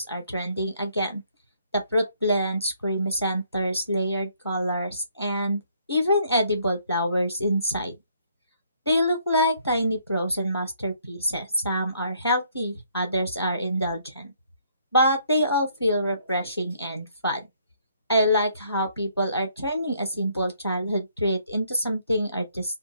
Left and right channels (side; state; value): both; inverted; correlation -0.66